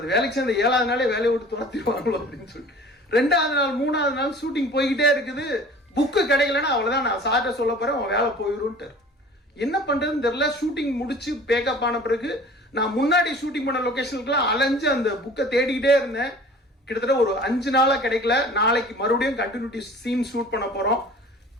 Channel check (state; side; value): normal; both; correlation 0.45